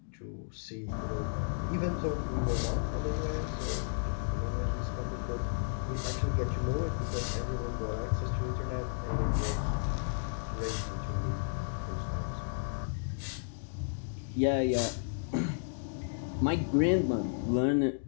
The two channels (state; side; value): silent; right; digital silence